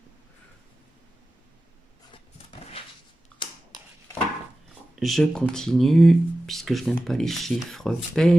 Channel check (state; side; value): normal; both; correlation 0.95